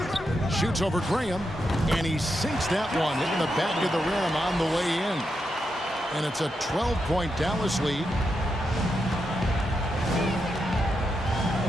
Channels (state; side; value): normal; both; correlation 0.85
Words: Shoots over Graham, and he sinks that one, hitting the back of the rim on the way in. And it's a 12-point Dallas lead.